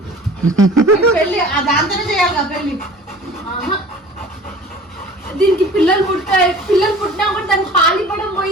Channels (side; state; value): both; normal; correlation 0.44